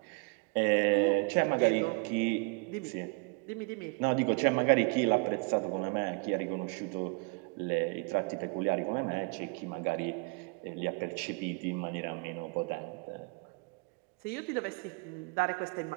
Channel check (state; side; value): quieter; left; 31.5 dB